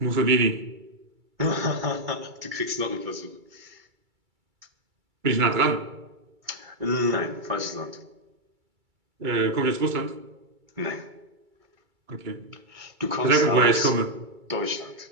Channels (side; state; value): left; late; 2.3 ms